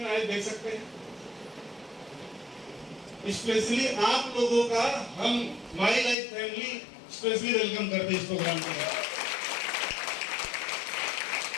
आए देख सकते हैं? स्पेशली आप लोगों का हम my life family specially welcome करते हैं इस प्रोग्राम के लिए।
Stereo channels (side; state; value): right; drops out; at 6.2 s